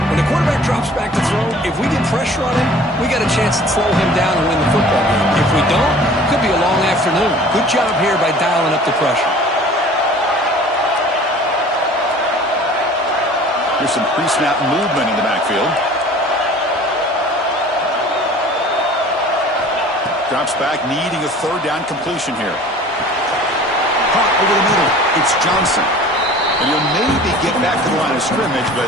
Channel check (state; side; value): normal; both; correlation 0.47